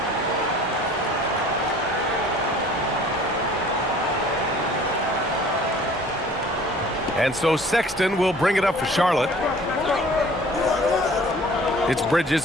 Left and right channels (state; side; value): normal; both; correlation 0.50